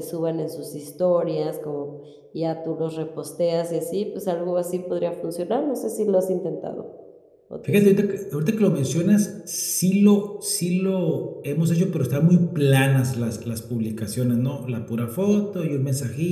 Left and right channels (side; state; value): both; identical; correlation 1.00